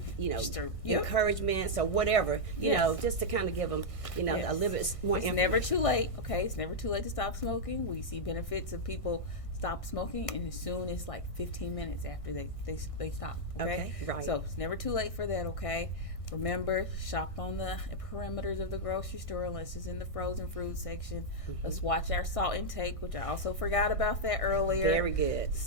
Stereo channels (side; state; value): right; late; 1.6 ms